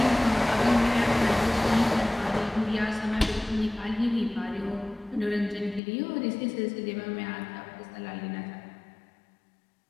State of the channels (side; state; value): right; drops out; at 5.8 s